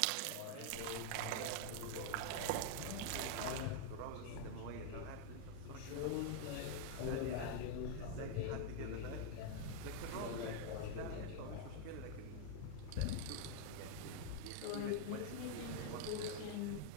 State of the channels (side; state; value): both; different; correlation 0.00